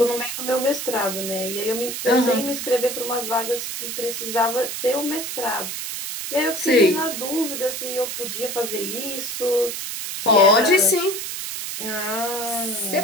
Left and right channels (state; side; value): noise; right; hiss, 5 dB below the sound